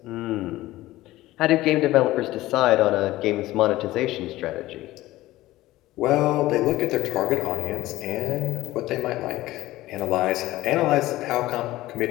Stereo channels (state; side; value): quieter; right; 16.9 dB